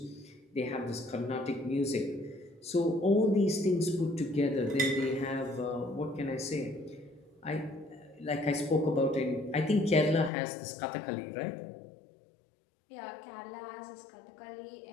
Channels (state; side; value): drops out; right; at 10.3 s